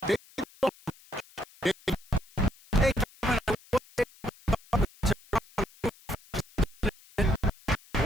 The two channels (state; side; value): noise; left; hiss, 25 dB below the sound